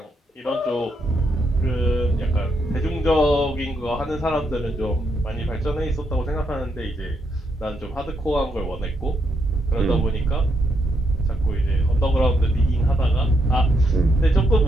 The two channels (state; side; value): normal; both; correlation 0.78